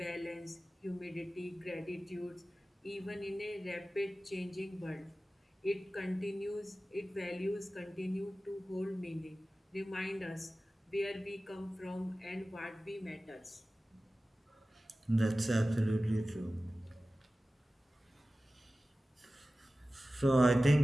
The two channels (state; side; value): normal; both; correlation 0.96